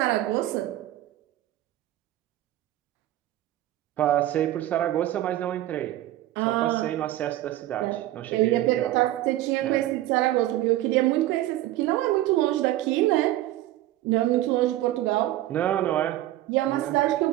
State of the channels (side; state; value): left; quieter; 14.8 dB